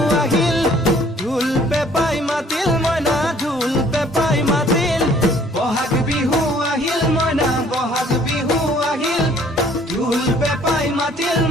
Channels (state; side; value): normal; both; correlation 0.58